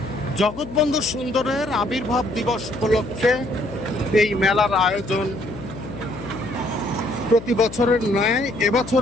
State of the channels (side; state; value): left; noise; hum, 13 dB below the sound